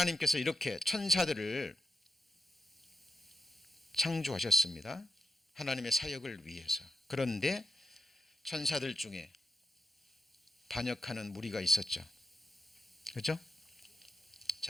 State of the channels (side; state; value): both; normal; correlation 0.85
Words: 이렇게 천사들을 창조하셨습니다. 하나님의 사역을 위해서. 그런데 천사들 중에 반역하는 무리가 있었죠. 그렇죠?